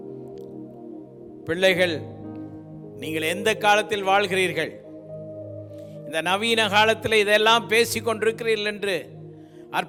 பிள்ளைகள், நீங்கள் எந்த காலத்தில் வாழ்கிறீர்கள்? இந்த நவீன காலத்தில் இதெல்லாம் பேசி கொண்டிருக்கிறீர்கள் என்று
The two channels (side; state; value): both; identical; correlation 1.00